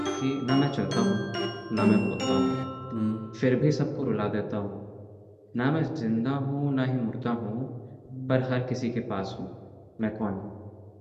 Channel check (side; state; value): both; identical; correlation 1.00